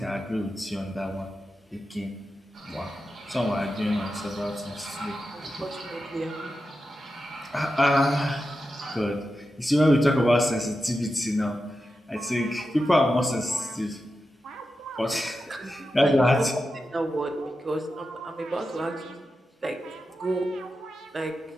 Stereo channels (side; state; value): both; normal; correlation 0.90